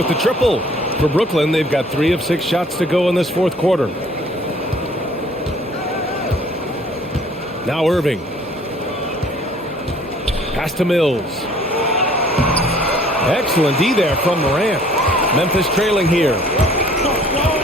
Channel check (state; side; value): normal; both; correlation 0.55